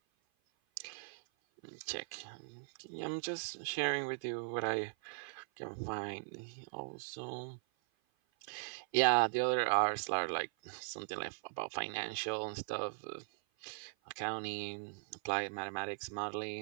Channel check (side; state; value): left; silent; 52 dB below the other